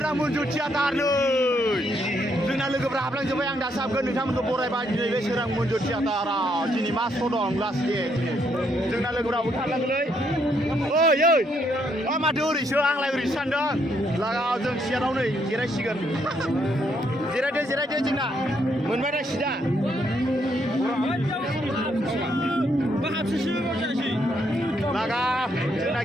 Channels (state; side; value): normal; both; correlation 0.74